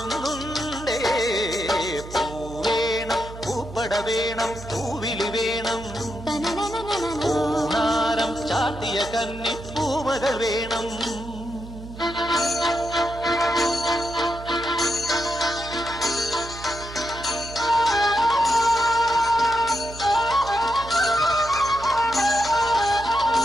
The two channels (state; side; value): noise; right; hum, 14 dB below the sound